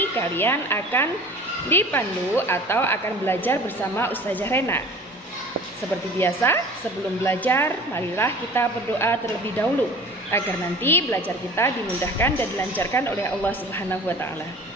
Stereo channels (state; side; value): normal; both; correlation 0.44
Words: kalian akan dipandu atau akan belajar bersama Ustazah Rena. Seperti biasa, sebelum belajar, marilah kita berdoa terlebih dahulu agar nanti belajar kita dimudahkan dan dilancarkan oleh Allah Subhanahu wa taala.